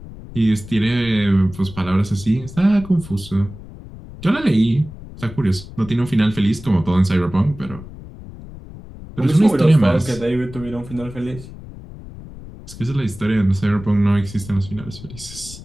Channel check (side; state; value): left; noise; rumble, 15 dB below the sound